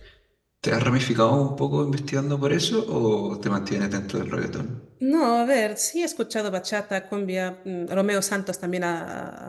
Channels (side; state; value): both; identical; correlation 1.00